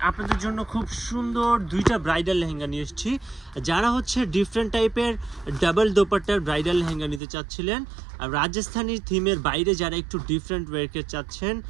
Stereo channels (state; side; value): drops out; left; at 7.2 s